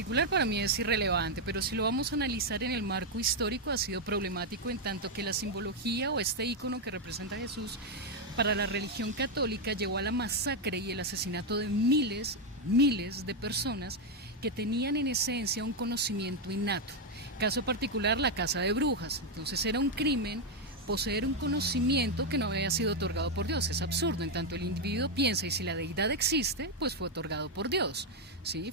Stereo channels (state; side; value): normal; both; correlation 0.02